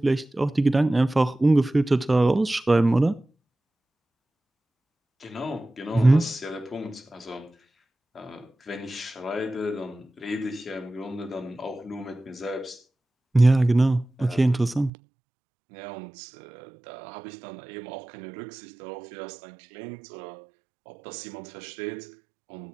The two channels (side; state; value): left; drops out; at 14.9 s